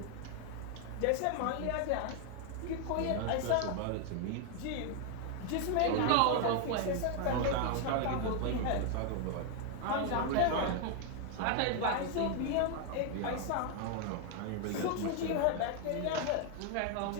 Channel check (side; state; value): both; different; correlation 0.00